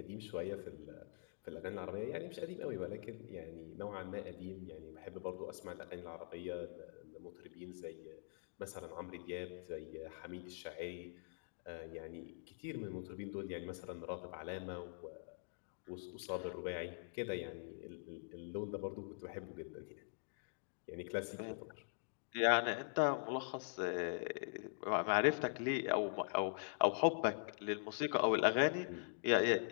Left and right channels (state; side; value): silent; right; digital silence